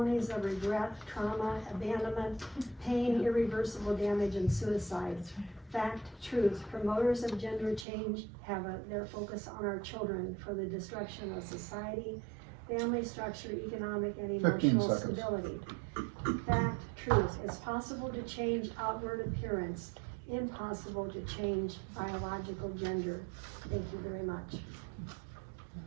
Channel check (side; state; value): left; drops out; at 7.9 s